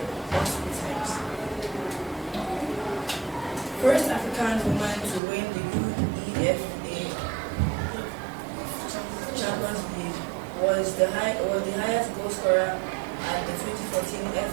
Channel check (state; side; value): drops out; left; at 5.2 s